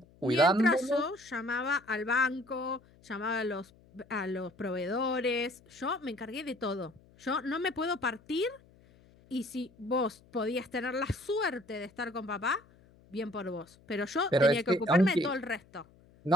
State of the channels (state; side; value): noise; left; hum, 27 dB below the sound